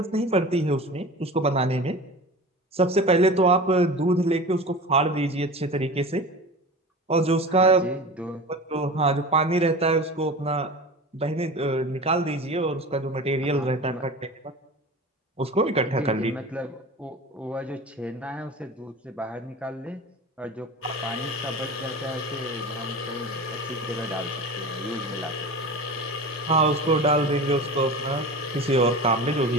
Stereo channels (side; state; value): both; normal; correlation 0.33